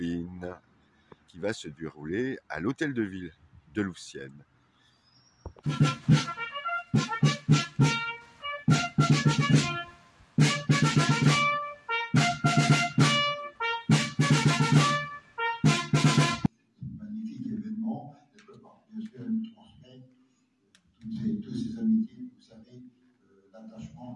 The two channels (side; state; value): both; identical; correlation 1.00